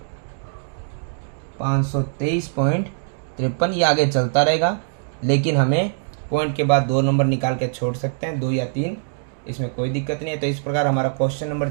523.53। ये आगे चलता रहेगा, लेकिन हमें पॉइंट के बाद 2 नंबर निकाल के छोड़ सकते हैं, 2 या 3, इसमें कोई दिक्कत नहीं है। तो इस प्रकार हमारा क्वेश्चन नंबर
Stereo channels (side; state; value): left; silent; digital silence